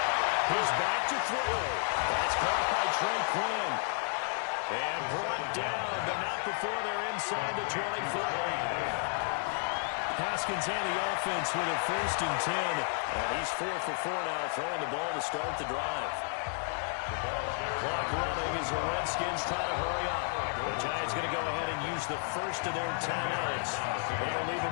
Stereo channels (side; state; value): right; silent; 56 dB below the other